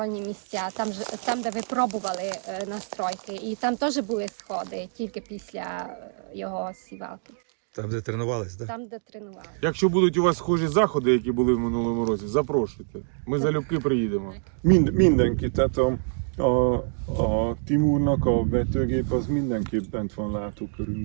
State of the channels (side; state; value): left; silent; digital silence